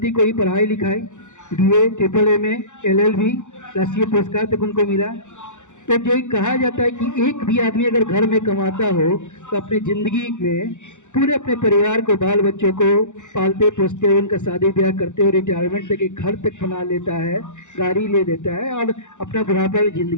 को ही पढ़ाई लिखाई, BA, MAAA, LLB, राष्ट्रीय पुरस्कार तक उनको मिला। तो जो कहा जाता है कि एक भी आदमी अगर घर में कमाता हो तो अपनी ज़िंदगी में पूरे अपने परिवार को, बाल बच्चों को पालते पोसते हुए, उनका शादी ब्याह करते हुए, रिटायरमेंट तक एक घर तक बना लेता है, गाड़ी ले लेता है और अपना बुढ़ापा में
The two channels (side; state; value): right; late; 0.85 ms